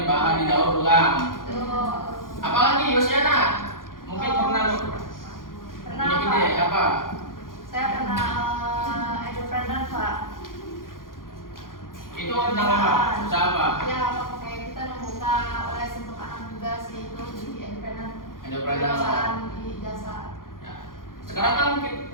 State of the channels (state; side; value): late; right; 0.90 ms